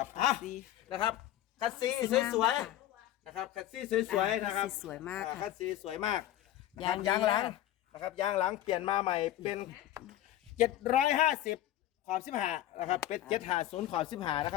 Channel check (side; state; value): right; quieter; 13.2 dB